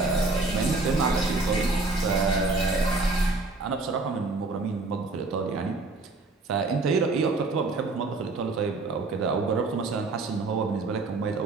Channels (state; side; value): quieter; left; 3.4 dB